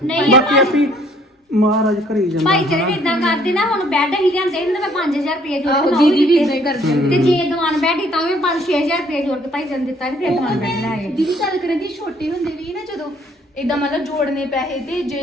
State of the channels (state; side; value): normal; both; correlation 0.62